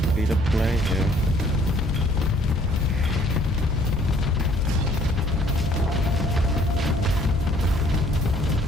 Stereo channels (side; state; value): both; normal; correlation 0.60